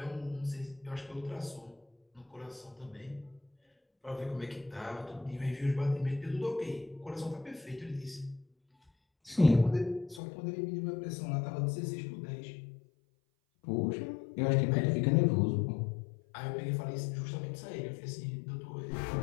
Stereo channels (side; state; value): right; drops out; at 10.2 s